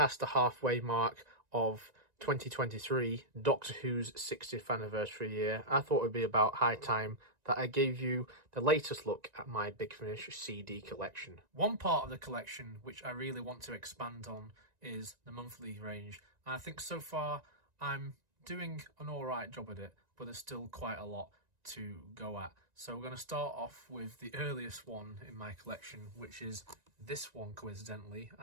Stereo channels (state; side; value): late; left; 1.9 ms